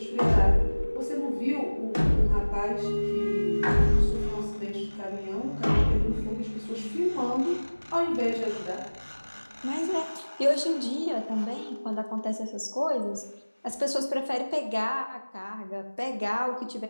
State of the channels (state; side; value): inverted; both; correlation -1.00